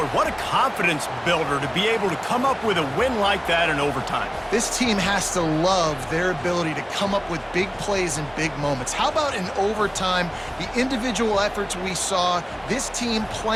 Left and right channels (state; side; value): identical; both; correlation 1.00